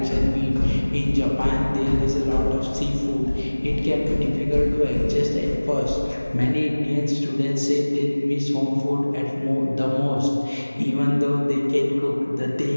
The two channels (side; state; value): both; inverted; correlation -1.00